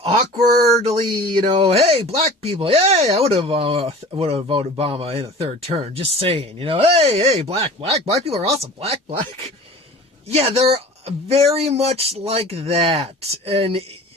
awkwardly, hey, black people, hey, I would have voted Obama in the third term, just saying, hey, black people are awesome, black. Yeah, they're very much like that, and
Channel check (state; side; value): normal; both; correlation 0.40